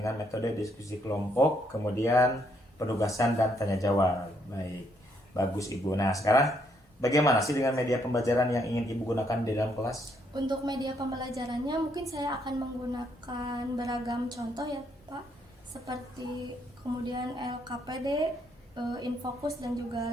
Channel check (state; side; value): normal; both; correlation 0.73